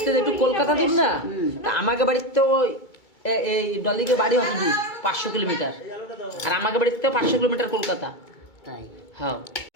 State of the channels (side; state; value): right; late; 2.2 ms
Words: তো একটু কলকাতা দূর না তা আমাকে বাড়িতে তো এই ডলিকে বাড়ি হতো দূর 500 কিলোমিটার আর আমাকে বাড়িতে তো 500 কিলোমিটার কলকাতা তাই হ্যাঁ